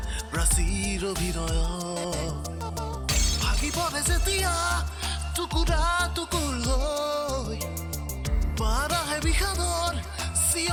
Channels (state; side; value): identical; both; correlation 1.00